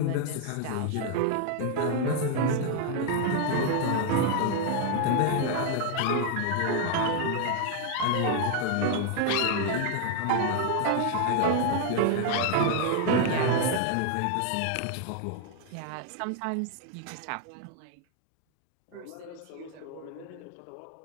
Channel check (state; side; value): different; both; correlation 0.00